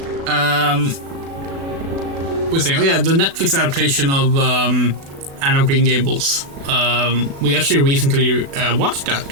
We're saying, oh yeah, the Netflix adaptation of Anne of Green Gables. We actually recently watched that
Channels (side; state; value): left; late; 36 ms